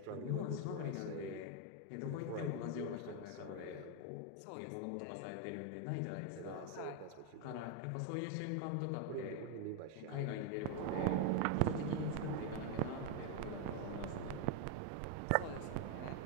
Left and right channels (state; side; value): different; both; correlation 0.01